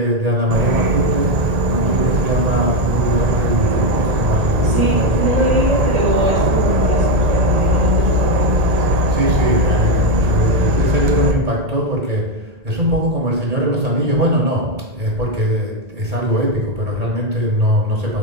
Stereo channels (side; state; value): left; late; 1.8 ms